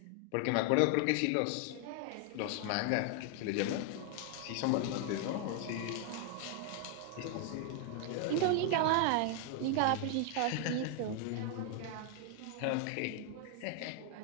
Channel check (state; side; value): different; both; correlation 0.00